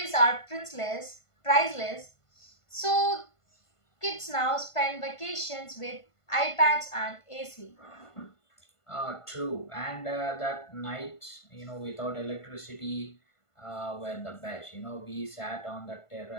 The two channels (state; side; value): late; right; 1.5 ms